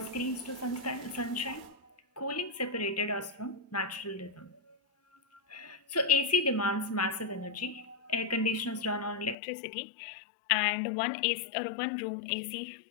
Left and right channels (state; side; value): drops out; right; at 9.3 s